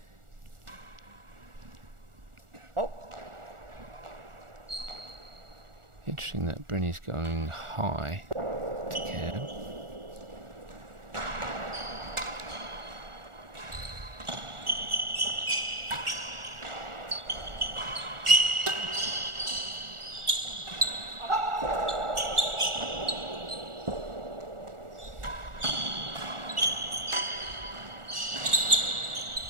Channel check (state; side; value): late; left; 1.4 ms